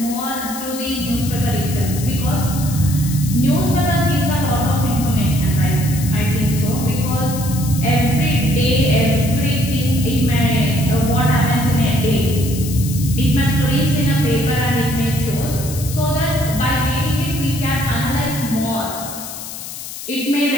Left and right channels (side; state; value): left; noise; hiss, 10 dB below the sound